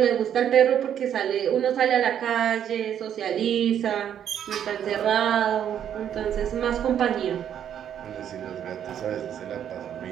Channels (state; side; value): quieter; left; 9.5 dB